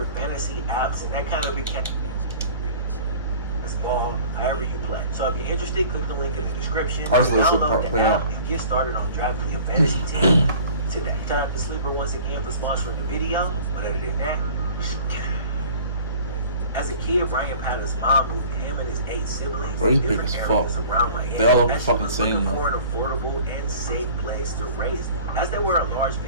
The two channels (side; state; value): both; inverted; correlation -0.46